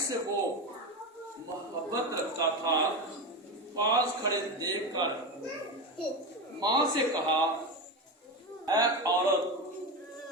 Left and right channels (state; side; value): normal; both; correlation 0.19